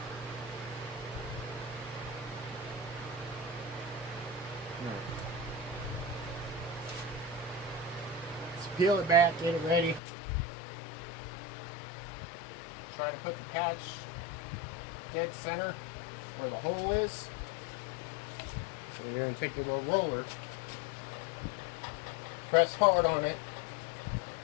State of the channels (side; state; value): right; drops out; at 10.0 s